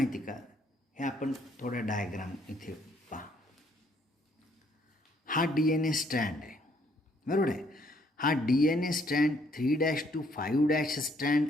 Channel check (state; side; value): normal; both; correlation 0.67